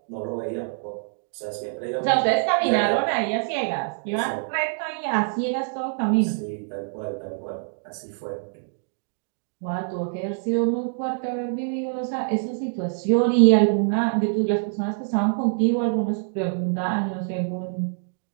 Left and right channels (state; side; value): silent; left; digital silence